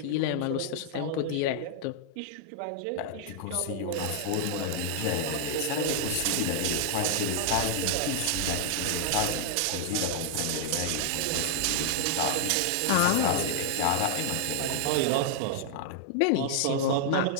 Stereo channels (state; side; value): different; both; correlation -0.01